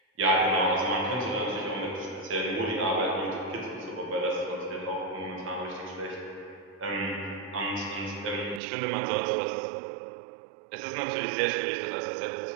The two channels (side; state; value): left; drops out; at 8.6 s